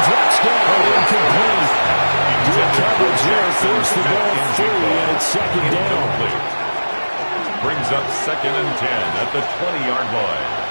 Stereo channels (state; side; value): inverted; both; correlation -1.00